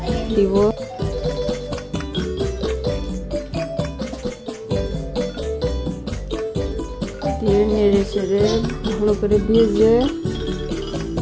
দিব, দিয়ে নেড়ে চেড়ে ভালো করে ভেজে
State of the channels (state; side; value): identical; both; correlation 1.00